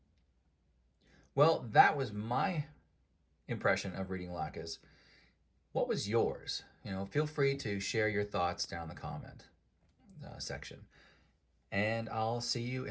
Well, that was my impression of reading Laches. What was yours? Feel free to share your thoughts down in the comment. section. And I'll see you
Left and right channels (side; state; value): both; identical; correlation 1.00